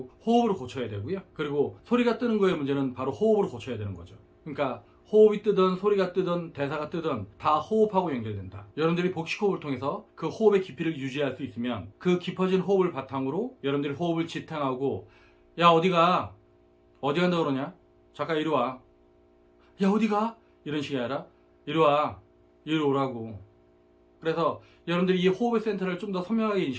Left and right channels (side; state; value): both; identical; correlation 1.00